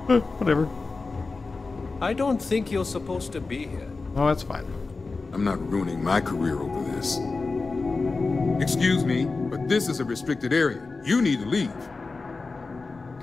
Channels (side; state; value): right; quieter; 3.9 dB